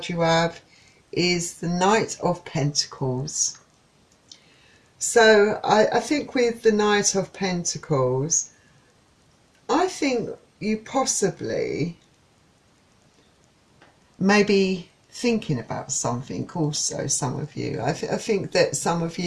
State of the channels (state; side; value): identical; both; correlation 1.00